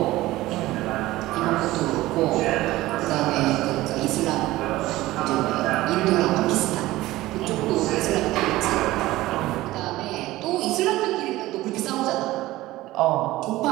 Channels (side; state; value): left; quieter; 17.3 dB